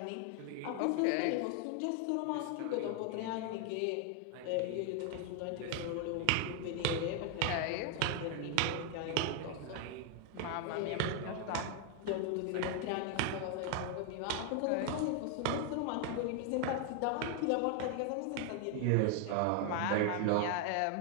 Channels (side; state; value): both; different; correlation 0.01